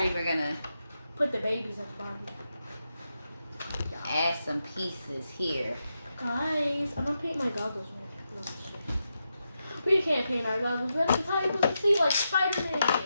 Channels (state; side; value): inverted; both; correlation -0.87